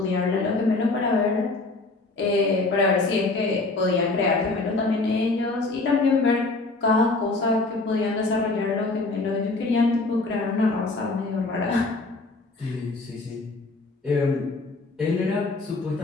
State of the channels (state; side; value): quieter; right; 3.4 dB